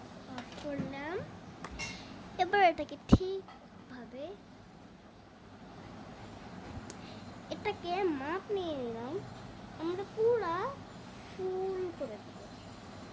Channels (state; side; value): identical; both; correlation 1.00